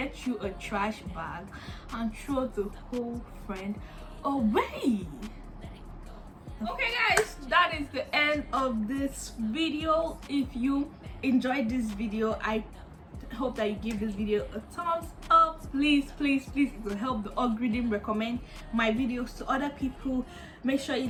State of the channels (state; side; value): identical; both; correlation 1.00